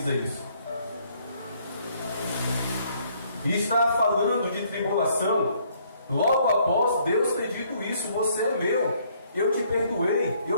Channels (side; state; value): both; inverted; correlation -0.65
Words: isso. E está falando de tribulação Logo após Deus ter dito isso: você é meu, eu te perdoei,